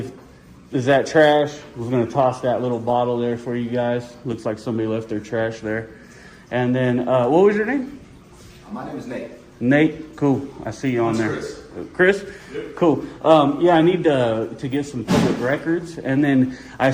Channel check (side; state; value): both; identical; correlation 1.00